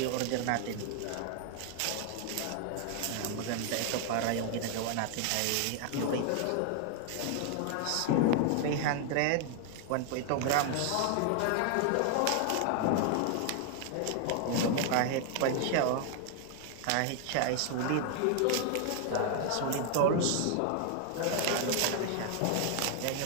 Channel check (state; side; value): different; both; correlation 0.00